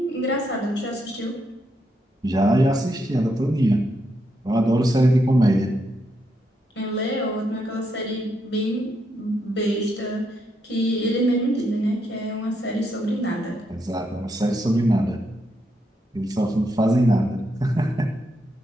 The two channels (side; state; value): both; normal; correlation 0.79